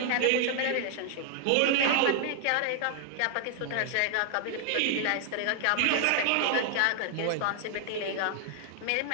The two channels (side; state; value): both; different; correlation 0.00